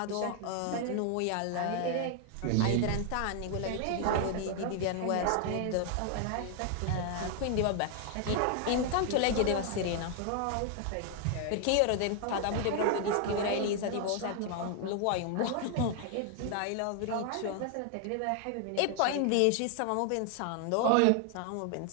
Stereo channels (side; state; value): both; different; correlation 0.00